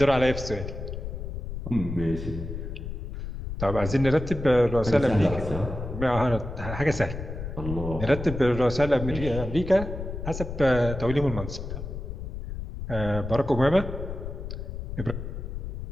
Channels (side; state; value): left; noise; rumble, 7 dB below the sound